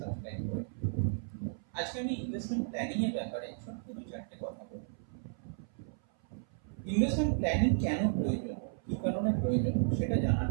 সাবস্ক্রাইব করে। আজকে আমি ইনভেস্টমেন্ট প্ল্যানিং এর ব্যাপারে ছোট্ট দু চারটে কথা বলবো। ইনভেস্টমেন্ট প্ল্যানিং কেন প্রয়োজন, কি কারণে প্রয়োজন সেটা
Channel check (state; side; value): silent; left; 55 dB below the other